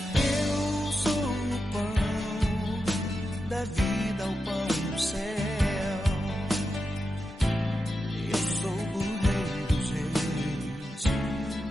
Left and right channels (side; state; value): both; normal; correlation 0.89